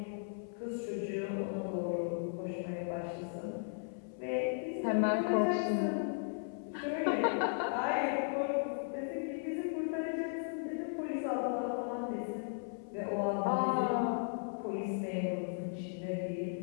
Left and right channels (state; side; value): silent; right; 54 dB below the other